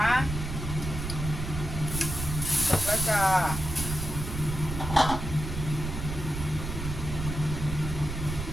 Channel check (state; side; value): noise; right; rumble, 5 dB below the sound